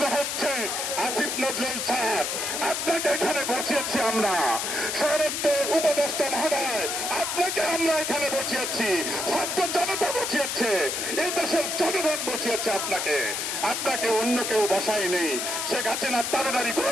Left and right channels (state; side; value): noise; left; hiss, 2 dB below the sound